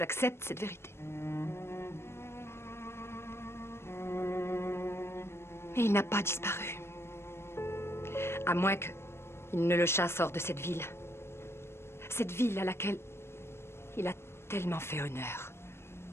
cette vérité. Mais il n'a pas disparu. À moins qu'il ne le chasse hors de cette ville. Cette ville à laquelle il a tellement fait honneur.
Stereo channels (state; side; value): late; right; 0.12 ms